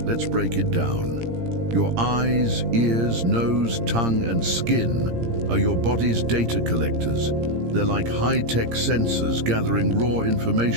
Let's break it down. Your eyes, ears, nose, tongue, and skin are your body's data collectors. They're like high-tech sensors gathering raw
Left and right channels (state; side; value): late; left; 17 ms